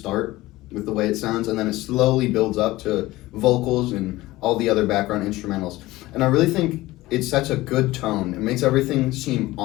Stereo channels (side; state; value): right; quieter; 18.3 dB